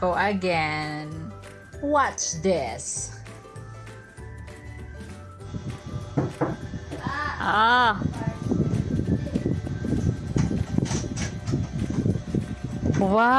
again. Watch this.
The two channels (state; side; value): identical; both; correlation 1.00